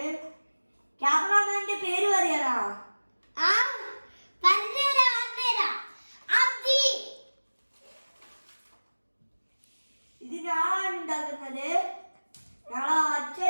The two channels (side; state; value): both; inverted; correlation -1.00